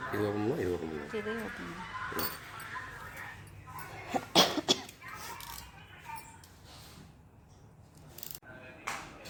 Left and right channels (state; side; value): identical; both; correlation 1.00